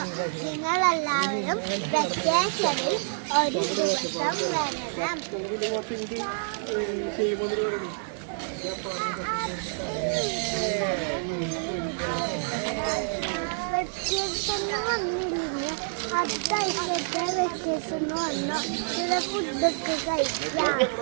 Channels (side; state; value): left; silent; digital silence